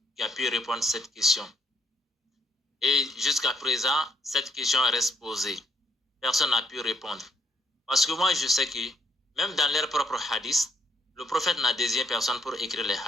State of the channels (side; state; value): both; normal; correlation 0.70